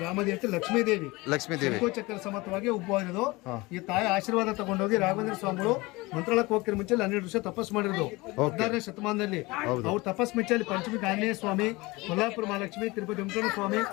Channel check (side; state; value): right; quieter; 22.8 dB